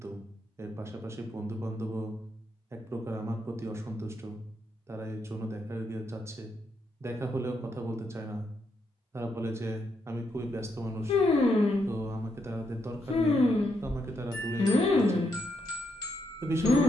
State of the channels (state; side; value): normal; both; correlation 0.79